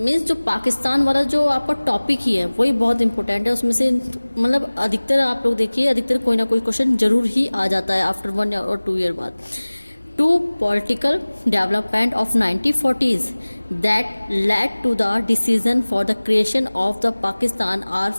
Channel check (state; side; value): inverted; both; correlation -1.00